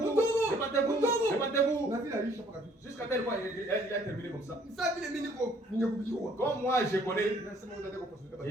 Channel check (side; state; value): both; normal; correlation 0.61